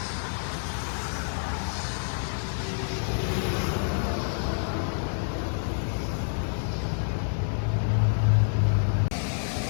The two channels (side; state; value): right; silent; digital silence